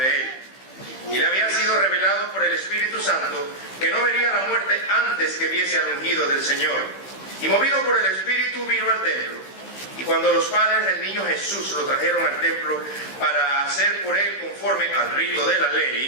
él. Y le había sido revelado por el Espíritu Santo que no vería la muerte antes que viese al ungido del Señor. Y movido por el Espíritu vino al templo. Y cuando los padres del niño Jesús lo trajeron al templo para hacer por él conforme al rito de la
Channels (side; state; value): right; late; 15 ms